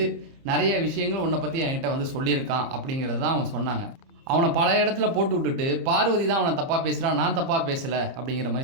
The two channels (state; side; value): late; left; 30 ms